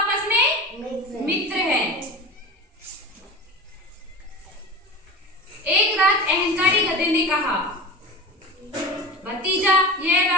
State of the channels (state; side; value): normal; both; correlation 0.30